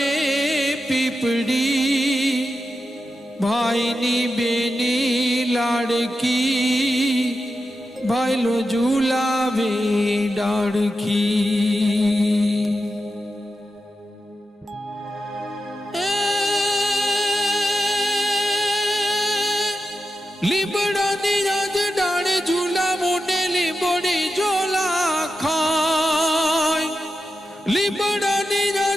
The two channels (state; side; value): normal; both; correlation 0.90